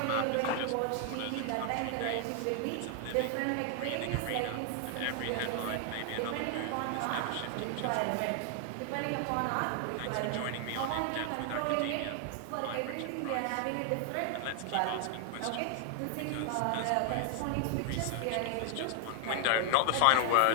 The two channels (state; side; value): different; both; correlation 0.00